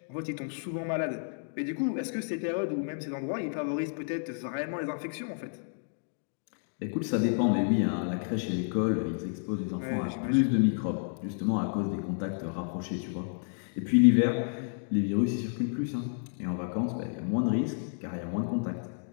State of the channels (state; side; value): silent; right; digital silence